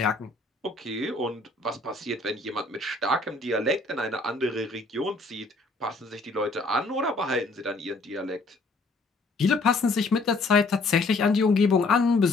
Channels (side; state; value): right; quieter; 3.3 dB